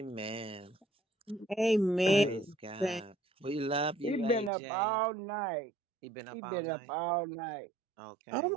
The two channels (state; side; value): drops out; left; at 4.5 s